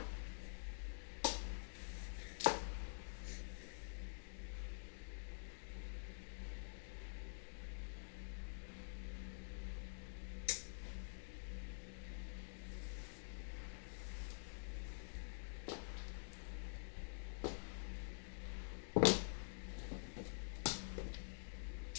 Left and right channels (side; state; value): right; silent; digital silence